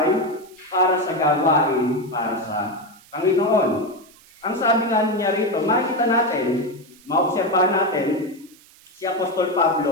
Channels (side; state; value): right; noise; hiss, 26 dB below the sound